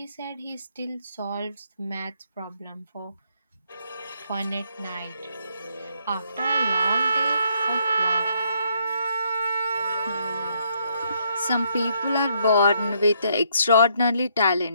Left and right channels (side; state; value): both; inverted; correlation -0.72